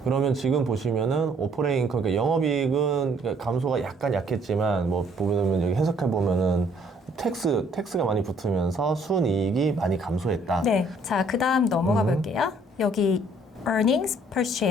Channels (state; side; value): normal; both; correlation 0.62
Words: 그러면 지금 보시면은 오퍼레인 인컴, 그러니까 영업이익은 감소가 약간 약했지만 뭐 보면 여기 해석해 보면은 텍스가 많이 붙으면서 순이익이 많이 감소했다. 네. 자, 그다음 넘어가 볼게요. 여기 earnings per